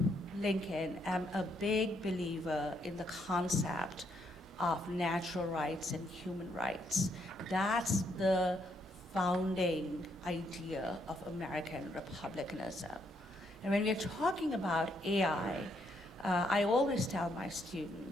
Lincoln, am a big believer in the concept of natural rights and human rights. That's the founding idea of American republicanism. And when we're talking about AI, I always tell my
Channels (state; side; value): normal; both; correlation 0.74